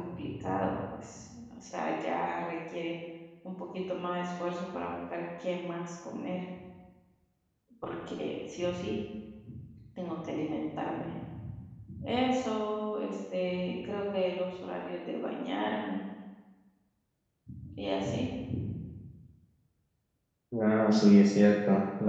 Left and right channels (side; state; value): both; identical; correlation 1.00